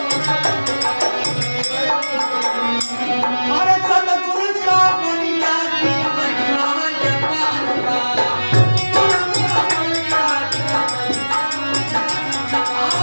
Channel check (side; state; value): both; inverted; correlation -1.00